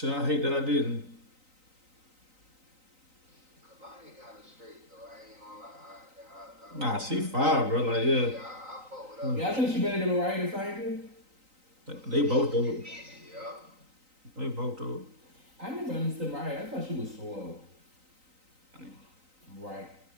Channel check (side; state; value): left; late; 3.9 ms